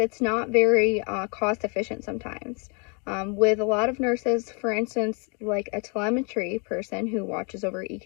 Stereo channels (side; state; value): right; quieter; 35.1 dB